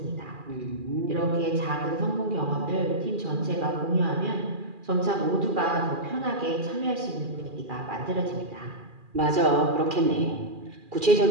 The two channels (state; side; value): late; left; 2.4 ms